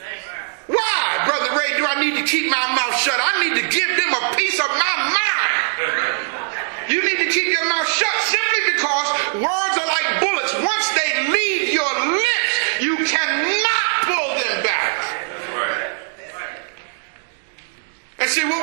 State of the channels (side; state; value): left; silent; digital silence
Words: Why, Brother Ray, do I need to keep my mouth shut? I need to give them a piece of my mind. You need to keep your mouth shut simply because words are like bullets. Once they leave your lips, you cannot pull them back. And see, what